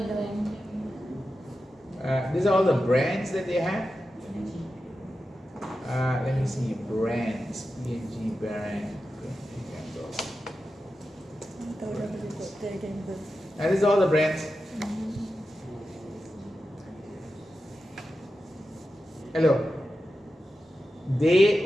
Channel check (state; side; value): normal; both; correlation 0.91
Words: know. These are all the brands that they have. Let me see, brands, P&G brand. And these are all the brands. Hello. They